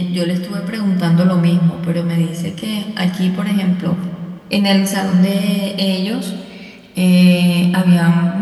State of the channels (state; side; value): identical; both; correlation 1.00